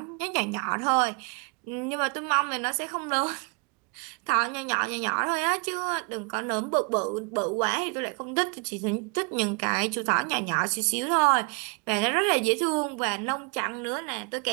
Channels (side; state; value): left; quieter; 34.6 dB